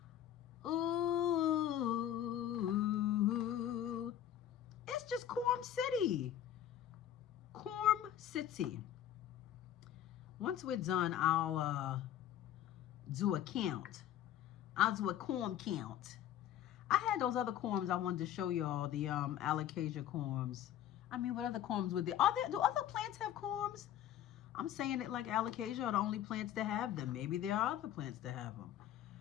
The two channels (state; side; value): quieter; right; 11.2 dB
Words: Ooh. It's just Corm City. Corm City. Once we're done, I'll do a count. I'll do a corm count. I had those other corms I wanted to show y'all, the Alocasia corms. I mean, what other corms would there? Do other plants have corms? I'm saying it like Alocasia are the only plants that have them. Maybe there are other plants that have them.